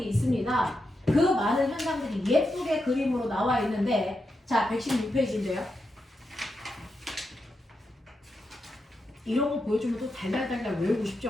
있습니다. 그 많은 현상들이 예쁘게 그림으로 나와 있는데 자, 116페이지인데요. 이런 거 보여주면 또 달달달달 외우고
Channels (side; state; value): both; normal; correlation 0.86